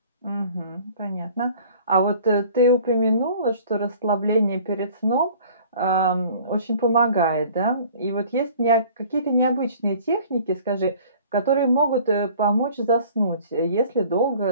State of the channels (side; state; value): both; inverted; correlation -0.50